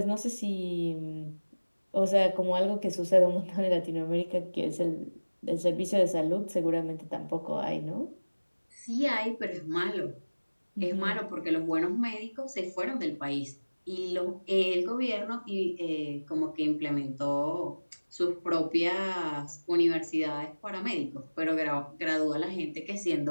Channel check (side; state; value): both; inverted; correlation -1.00